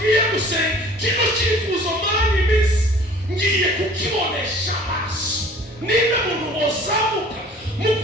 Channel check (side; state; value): both; normal; correlation 0.49